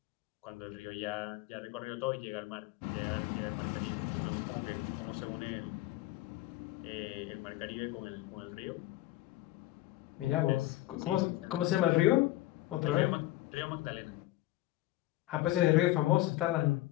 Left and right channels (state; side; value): quieter; right; 16.5 dB